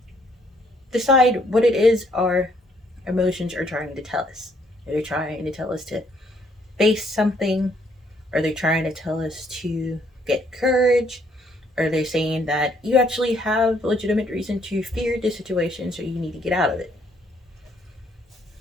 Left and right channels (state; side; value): normal; both; correlation 0.68